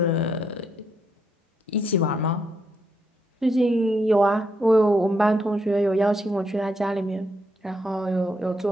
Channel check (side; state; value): both; normal; correlation 0.76